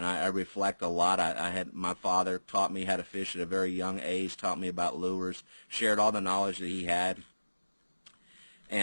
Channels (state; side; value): inverted; both; correlation -1.00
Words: I reflect a lot. I had my father taught me how to fish at a very young age, taught me about lures, shared all the knowledge that he had.